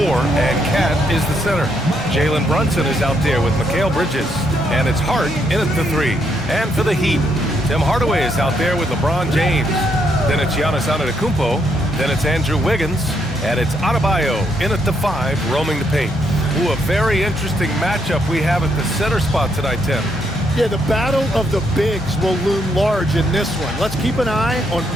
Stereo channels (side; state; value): both; normal; correlation 0.75